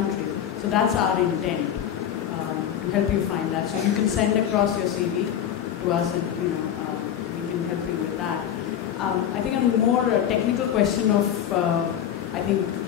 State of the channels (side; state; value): right; quieter; 9.8 dB